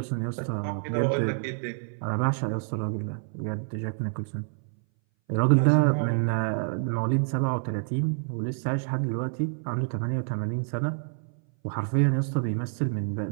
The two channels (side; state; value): left; silent; 59 dB below the other